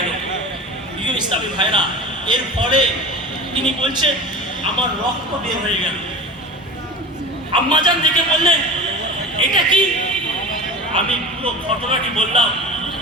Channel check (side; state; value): both; normal; correlation 0.32